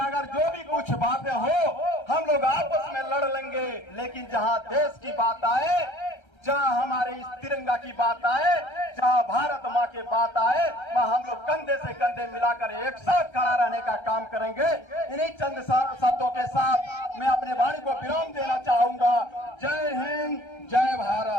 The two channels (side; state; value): right; late; 1.3 ms